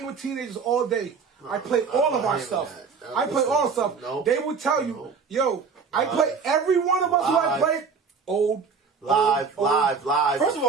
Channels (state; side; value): quieter; left; 5.4 dB